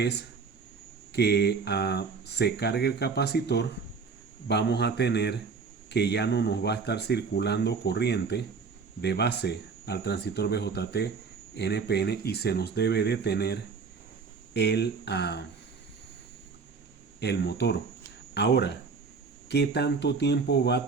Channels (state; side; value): quieter; left; 5.1 dB